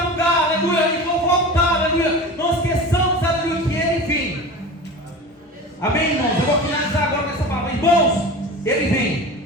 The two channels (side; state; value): both; normal; correlation 0.32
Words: lugar, aleluia, e vou voltar, aleluia. Não esqueçamos, aleluia, que Ele vem. Amém, irmãos? Eu vou finalizar agora com essa palavra. Irmãos, Ele